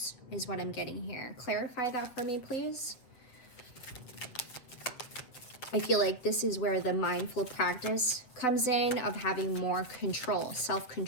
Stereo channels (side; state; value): right; late; 7.7 ms